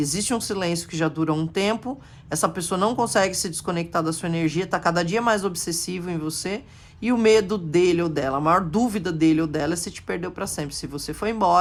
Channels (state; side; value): identical; both; correlation 1.00